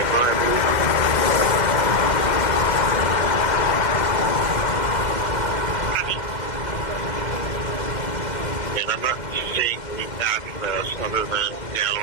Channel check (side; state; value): right; late; 2.1 ms